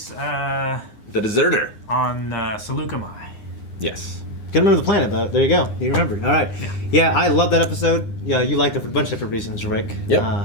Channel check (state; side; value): late; right; 9.7 ms